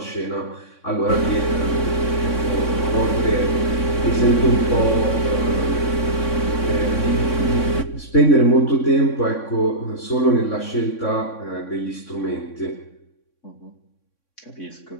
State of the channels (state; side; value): late; right; 3.6 ms